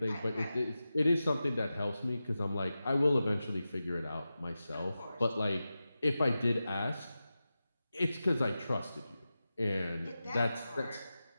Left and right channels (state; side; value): inverted; both; correlation -0.93